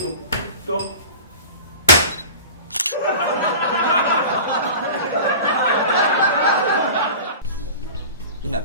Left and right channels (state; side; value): inverted; both; correlation -0.36